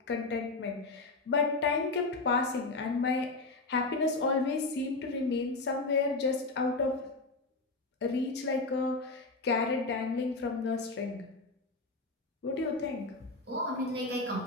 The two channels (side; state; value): right; quieter; 3.4 dB